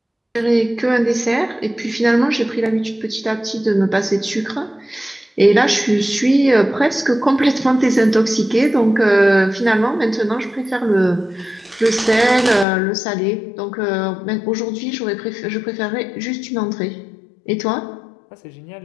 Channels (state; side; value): drops out; right; at 12.7 s